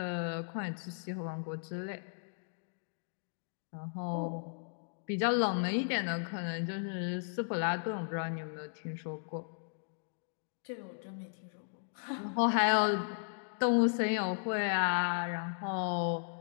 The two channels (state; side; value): silent; right; digital silence